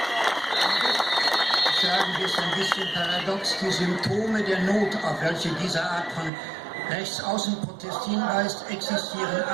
Sagen wir es ein bisschen paradox, die Symptome der Not, auf welche diese Art von Rechtsaußenprotest hinweist, existieren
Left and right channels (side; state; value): left; drops out; at 6.3 s